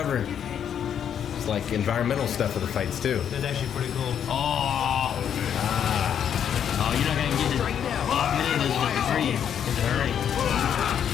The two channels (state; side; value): quieter; right; 8.8 dB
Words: It's like environmental stuff for the fights too. That's actually pretty cool. Oh. Oh, you're not gonna get to many of those with free. It's hurry.